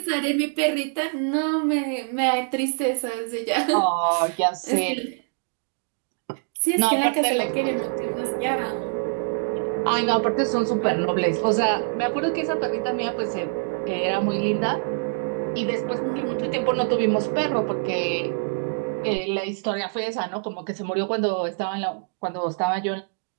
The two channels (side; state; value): left; silent; 62 dB below the other